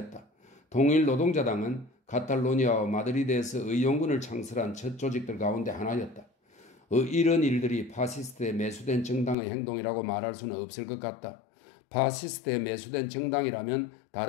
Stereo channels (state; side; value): drops out; right; at 9.3 s